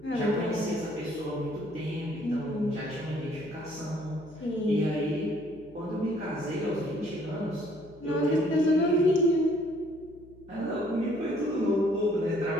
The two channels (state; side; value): noise; left; hum, 24 dB below the sound